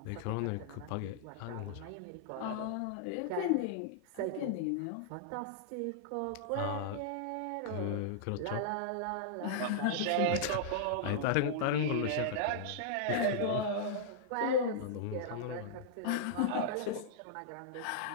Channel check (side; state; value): both; different; correlation -0.01